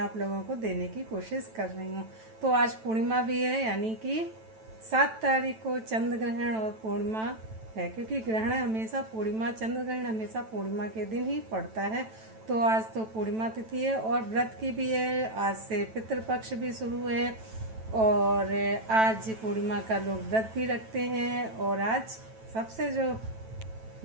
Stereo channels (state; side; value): late; left; 9.1 ms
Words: लोगों को देने की कोशिश कर रही हूँ। तो आज पूर्णिमा भी है, यानी कि 7 तारीख को चंद्र ग्रहण और पूर्णिमा है, क्योंकि ग्रहण हमेशा पूर्णिमा, चंद्र ग्रहण हमेशा पूर्णिमा के दिन ही पड़ता है। तो आज तो पूर्णिमा तिथि है और व्रत की भी है। आज से पितृपक्ष भी शुरू है और आज पूर्णिमा का लोग व्रत भी रखते हैं। और आज सबसे जो